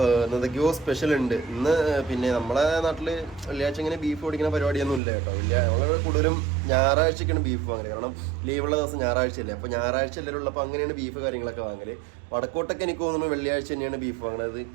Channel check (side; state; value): left; drops out; at 5.0 s